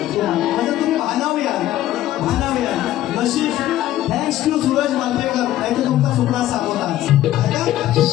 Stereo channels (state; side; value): quieter; right; 13.7 dB